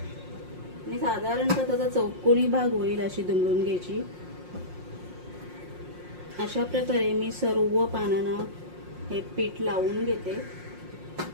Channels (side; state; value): left; late; 5.6 ms